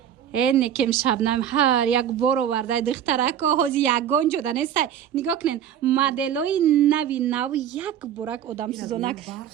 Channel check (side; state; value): left; quieter; 9.7 dB